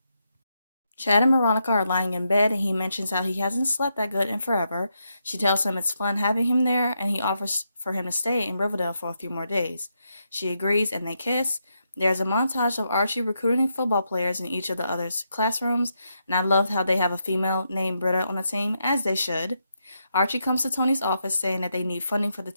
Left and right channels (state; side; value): inverted; both; correlation -0.82